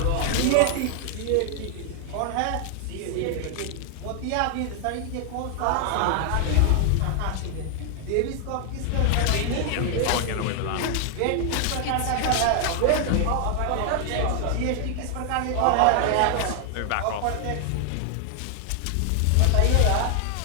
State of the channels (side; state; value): both; different; correlation 0.00